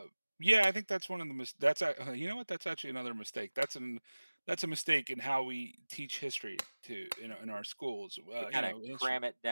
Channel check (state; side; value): inverted; both; correlation -1.00